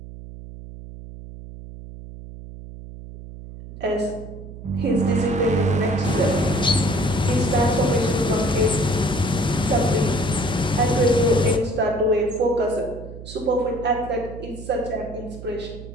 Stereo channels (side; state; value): right; noise; hum, 14 dB below the sound